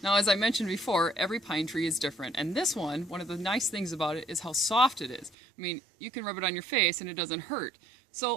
Now, as I mentioned before, every pine tree is different, and this one of the nice things about it is how soft it is. I mean, you can rub it on your face and it doesn't hurt.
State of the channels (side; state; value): left; drops out; at 5.4 s